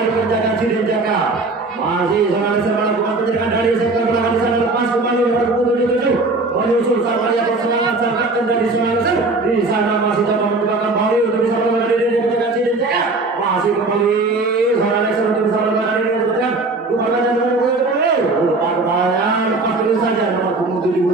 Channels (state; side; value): quieter; left; 3.3 dB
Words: penjagaan si Ninjaka. Masih seorang Lexer melakukan penjagaan dari sektor belakang di sana lepas kembali nomor punggung 77. Menyusul sang penjaga serangan sang kapten dari seorang Lexer. Di sana masih coba mencoba kembali untuk bisa menemukan diri dari penjagaan si Ninjaka. Masih kembali seorang Lexer untuk bisa menemukan diri dari penjagaan. Rupanya nomor punggung 77. Rupanya lepas dulu saja nomor punggung